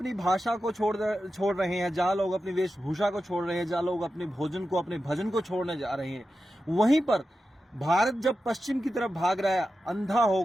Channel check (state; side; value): normal; both; correlation 0.91